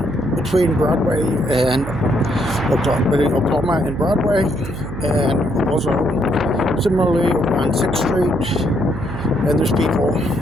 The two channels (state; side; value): noise; right; hum, 9 dB below the sound